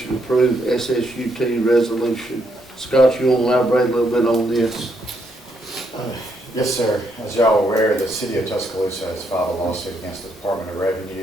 to approve SSUT resolution. Scott, you want to elaborate a little bit on this? Yes, sir. As y'all are aware, the City of Tuscaloosa has filed a lawsuit against the Department of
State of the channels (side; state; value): both; normal; correlation 0.75